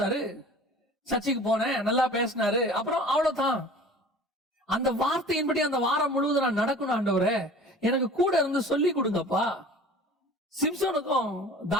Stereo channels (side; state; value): both; normal; correlation 0.43